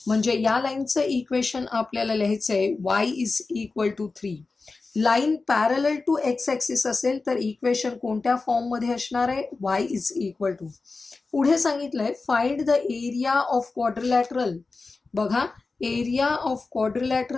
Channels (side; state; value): right; quieter; 3.9 dB